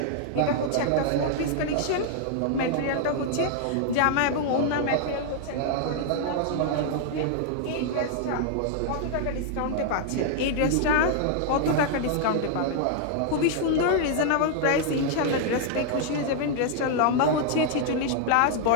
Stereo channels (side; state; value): both; different; correlation 0.00